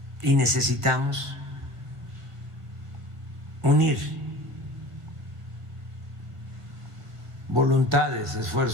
Y necesitamos unir voluntades,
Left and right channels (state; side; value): late; left; 1.6 ms